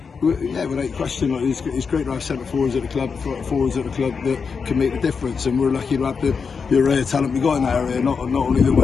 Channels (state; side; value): quieter; right; 5.6 dB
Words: Yeah, without question, like, it's great to have centre forwards at the club that can make the difference, and we're lucky to have the array of talent we got in that area. Not only the